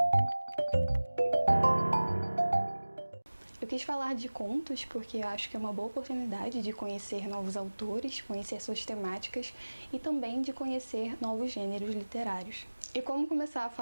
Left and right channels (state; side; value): inverted; both; correlation -1.00